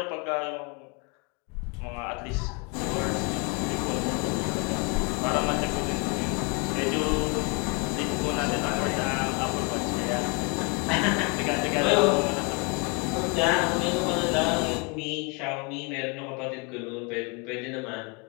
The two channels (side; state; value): right; quieter; 31.7 dB